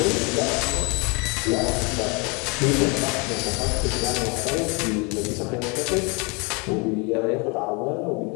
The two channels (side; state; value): right; quieter; 30.7 dB